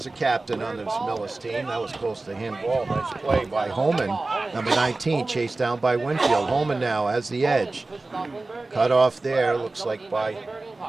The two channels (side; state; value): left; quieter; 3.3 dB